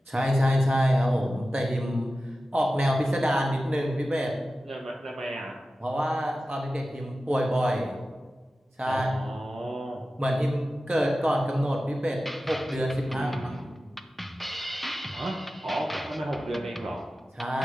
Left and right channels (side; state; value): both; normal; correlation 0.94